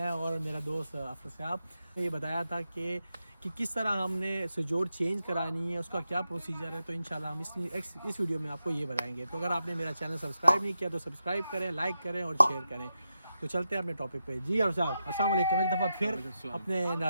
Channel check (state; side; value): inverted; both; correlation -0.88